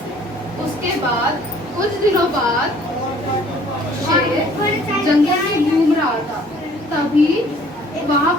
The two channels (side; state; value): both; normal; correlation 0.56